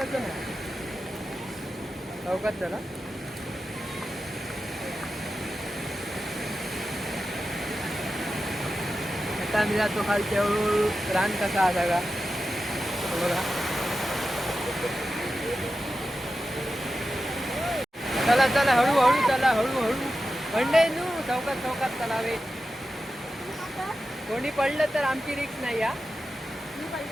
चौकात चला. आता आम्ही जातो खालच्या रान कसा आला का बघा. चला चला हळूहळू चला हळूहळू मंडई नू चौकात चौकात तलावे. कोणी पडलं तर आमची रिक्स नाही हा. मी पडले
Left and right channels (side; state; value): both; normal; correlation 0.92